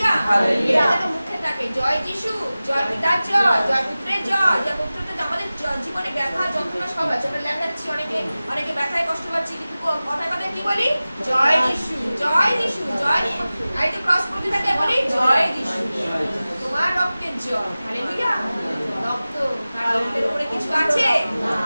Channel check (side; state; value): both; inverted; correlation -0.97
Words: hallelujah. এটা তো মুখে থাকে জয় যিশু, জয় পিতার জয়, জয় পুত্রের জয়। যে পুত্রটা আমাদের জীবনে ব্যথা যন্ত্রণা সব আছে, আমরা ল্যাংড়াচ্ছি, অনেকে ব্যথায় কষ্ট পাচ্ছি, কিন্তু কথায় কথায় কি বলি? জয় যিশু, জয় যিশু, জয়। এই তো ক্রস করতে থাকে বলি জয় যিশু, তোমার রক্তের জয়। হালেলুয়া। রক্ত, তার রক্তের উপরে কিছু আছে?